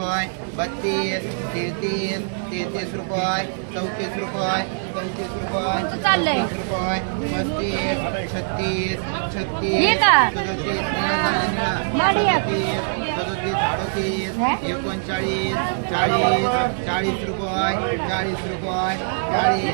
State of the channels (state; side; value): silent; left; digital silence